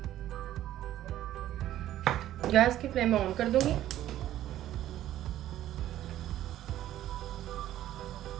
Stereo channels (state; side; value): quieter; left; 13.0 dB